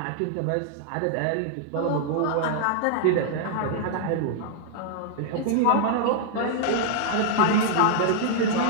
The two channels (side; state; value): both; different; correlation -0.01